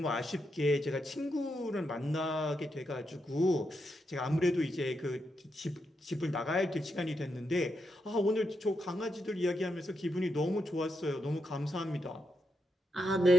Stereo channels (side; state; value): both; normal; correlation 0.83